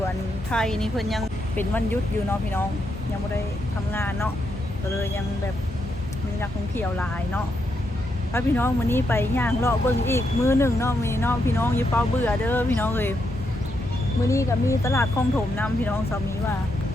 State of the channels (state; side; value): normal; both; correlation 0.81